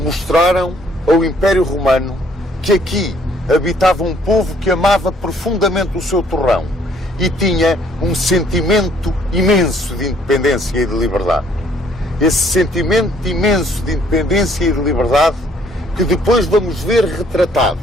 ao Império Romano que aqui habitava um povo que amava profundamente o seu torrão e tinha um sentimento imenso de independência e de liberdade. Esse sentimento imenso de independência e de liberdade que depois vamos ver retratado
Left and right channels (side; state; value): both; normal; correlation 0.63